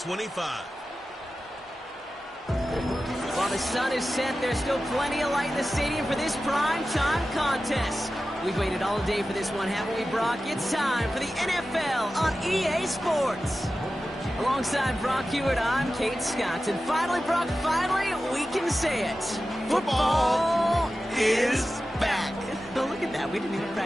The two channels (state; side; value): normal; both; correlation 0.94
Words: While the sun is set, there's still plenty of light in the stadium for this prime-time contest. We've waited all day for this one, haven't we, Brock? It's time for the NFL on EA Sports. Alongside Brock Hewitt, I'm Kate Scott. And finally, Brock, we can say it. Football is back. Look at that. We didn't even